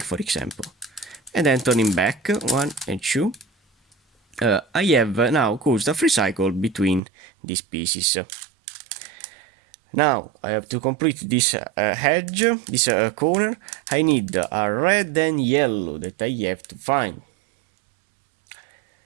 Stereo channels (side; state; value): left; drops out; at 7.0 s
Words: for example, and then turning back 1 and 2. I have now caused a free cycle between these pieces. Now I have to complete this edge, this corner. I need a red and yellow that I have to find.